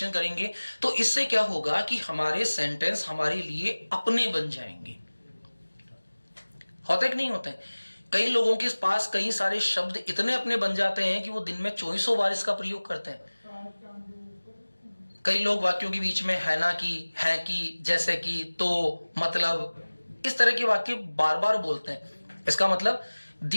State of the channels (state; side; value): inverted; both; correlation -1.00